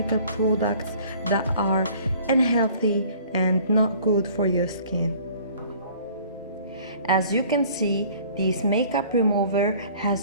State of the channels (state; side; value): inverted; both; correlation -0.52